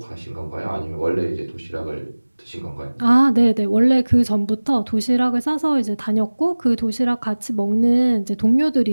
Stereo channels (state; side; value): inverted; both; correlation -1.00